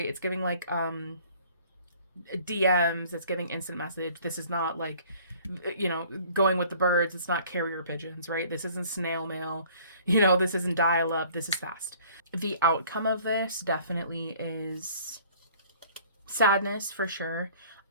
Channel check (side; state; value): both; inverted; correlation -0.53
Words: It's giving like DMs. It's giving instant message. This is not like, going with the birds. It's not carrier pigeons, right? This isn't snail mail. This isn't dial up. This is fast. The outcome of this definitely is sadness for sure.